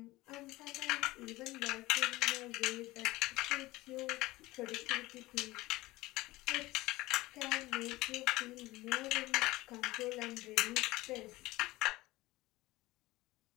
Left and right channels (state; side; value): quieter; right; 19.3 dB